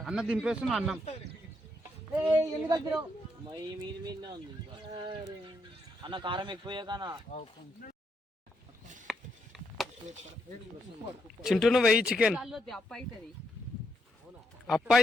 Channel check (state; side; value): normal; both; correlation 0.78